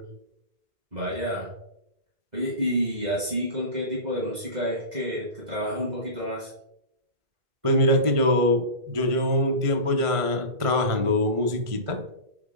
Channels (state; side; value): late; left; 1.5 ms